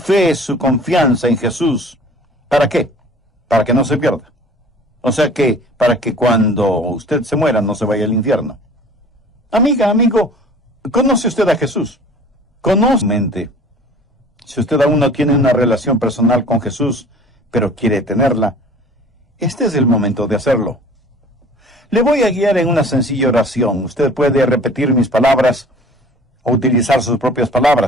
su confianza en Jesús. ¿Para qué? Para que no se pierda. O sea que, para que cuando usted se muera no se vaya al infierno. Amiga, amigo, ¿conoce usted a Jesús? Conoce mente. Si usted aún no tiene una relación personal con Jesús, pero quiere tenerla, este es el momento de hacerlo. Le voy a guiar en una sencilla oración. Usted puede repetir mis palabras o utilizar sus propias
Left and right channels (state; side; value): normal; both; correlation 0.47